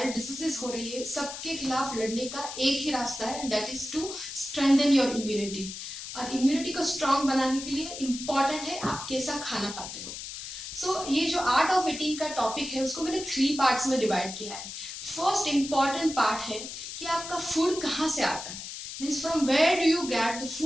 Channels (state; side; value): noise; left; hiss, 9 dB below the sound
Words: डिसीजेस हो रही है, सबके खिलाफ लड़ने का एक ही रास्ता है, and that is to strengthen your immunity. और इम्यूनिटी को स्ट्रांग बनाने के लिए इम्पॉर्टेंट है आप कैसा खाना खाते हो। ये जो आर्ट ऑफ ईटिंग का टॉपिक है उसको मैंने 3 पार्ट्स में डिवाइड किया है। फर्स्ट इम्पॉर्टेंट पार्ट है कि आपका फूड कहाँ से आता है, means from where do you get the